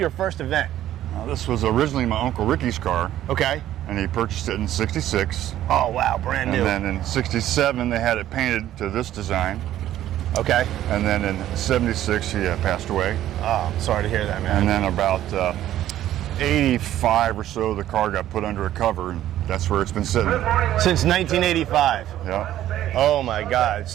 first event? This was originally my Uncle Ricky's car. Okay. And he purchased it in 66. Oh, wow, brand new. And then in 67, they had it painted to this design. Okay. And then in 76, he passed away. Oh, sorry to hear that, man. And then about 85 or so, the car got put under a cover, and that's where it's been sitting. Since 1985. Yeah. Oh my God.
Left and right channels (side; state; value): left; quieter; 12.7 dB